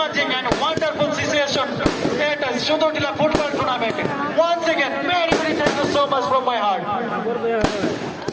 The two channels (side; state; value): both; identical; correlation 1.00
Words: and wonderful situation. It is Sudotila football tournament. Once again, very thank you so much from my heart.